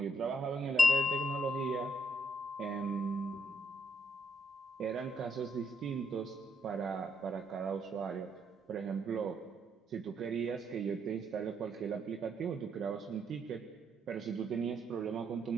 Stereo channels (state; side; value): normal; both; correlation 0.75